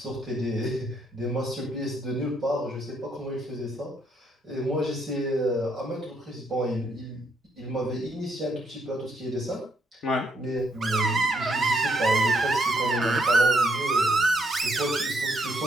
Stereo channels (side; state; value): both; normal; correlation 0.73